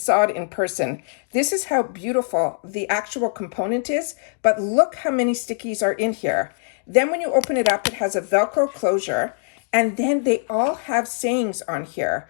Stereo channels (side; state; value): right; silent; digital silence